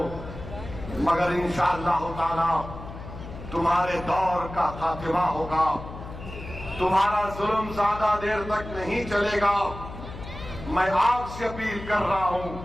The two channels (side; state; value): left; noise; hum, 12 dB below the sound